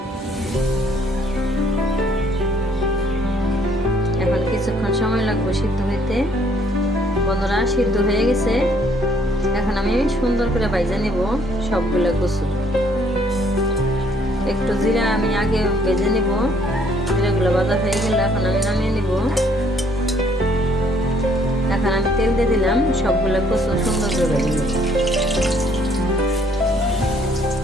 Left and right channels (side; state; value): both; normal; correlation 0.64